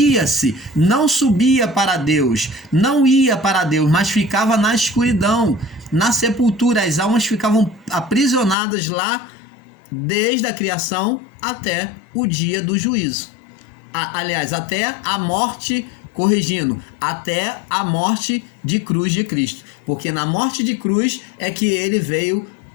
não subia para Deus, não ia para Deus, mas ficava na escuridão, na sepultura. As almas ficavam aprisionadas lá desde a criação até o dia do juízo. Aliás, até a morte, corrigindo, até a morte de cruz de Cristo. Porque na morte de cruz é que ele veio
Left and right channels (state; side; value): drops out; right; at 8.6 s